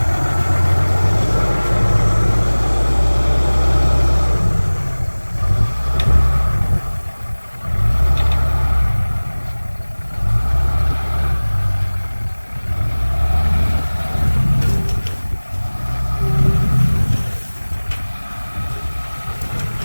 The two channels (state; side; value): inverted; both; correlation -1.00